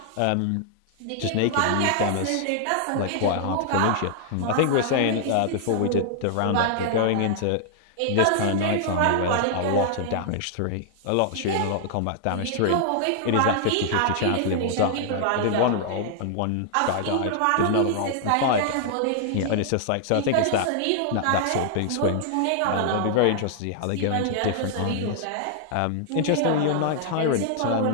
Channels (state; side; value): different; both; correlation -0.01